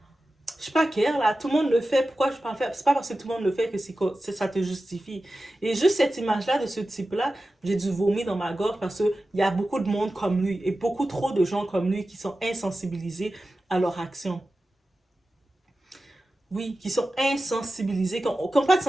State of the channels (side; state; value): both; normal; correlation 0.94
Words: je sais pas quelle, là, tout le monde le fait, pourquoi je peux en faire? C'est pas parce que tout le monde le fait que ça te justifie. Et juste cette image-là de ce type-là, j'ai dû vomir dans ma gorge parce qu'il y a beaucoup de monde comme lui et beaucoup trop de gens comme lui qui sont insensibilisés à leur action. Oui, qui sont insensibilisés, qui n'ont pas de